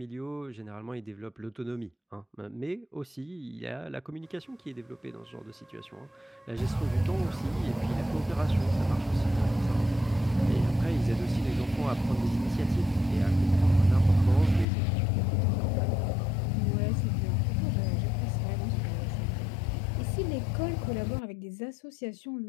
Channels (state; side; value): drops out; right; at 14.7 s